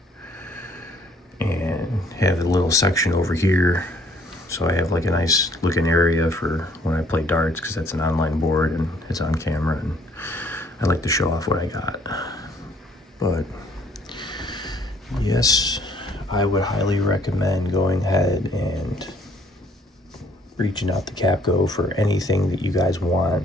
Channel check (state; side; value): normal; both; correlation 0.61